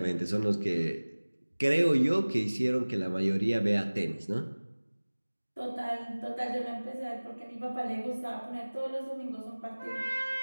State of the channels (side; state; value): both; inverted; correlation -1.00